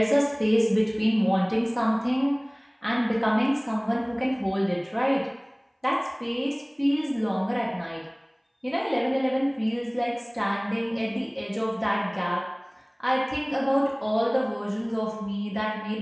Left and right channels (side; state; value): both; identical; correlation 1.00